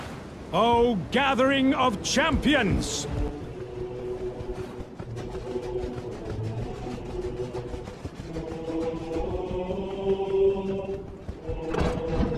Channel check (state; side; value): identical; both; correlation 1.00